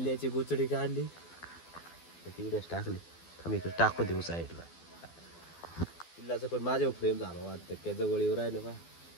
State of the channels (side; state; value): right; late; 12 ms